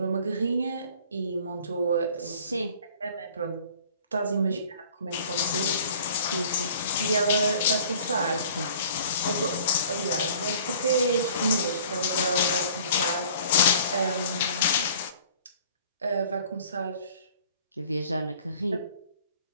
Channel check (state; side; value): inverted; both; correlation -0.51